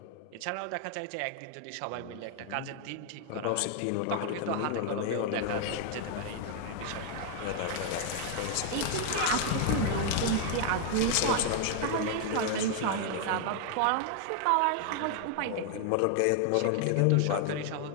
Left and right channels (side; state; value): both; different; correlation 0.00